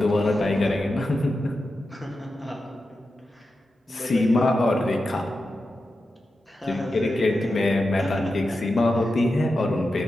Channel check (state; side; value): normal; both; correlation 0.90